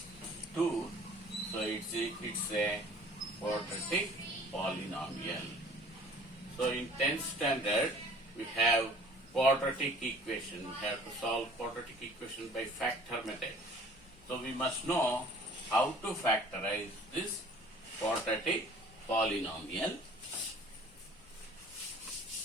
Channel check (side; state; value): left; noise; rumble, 27 dB below the sound